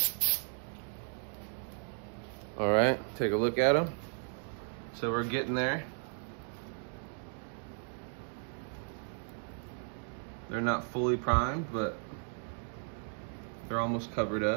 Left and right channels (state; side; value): silent; left; 54 dB below the other